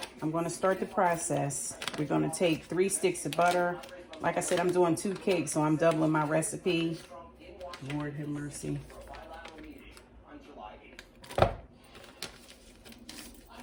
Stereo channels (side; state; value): both; identical; correlation 1.00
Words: I'm going to start the process. We're going to take 3 sticks of butter. Like I said, I'm doing 2 cakes, so I'm doubling my recipe. Lord have mercy.